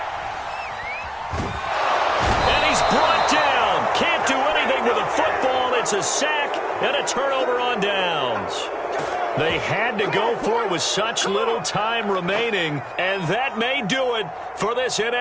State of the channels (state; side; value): identical; both; correlation 1.00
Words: And he's brought down. Can't do anything with a football. It's a sack and a turnover on downs. They had to go for it with such little time remaining, and that may do it for this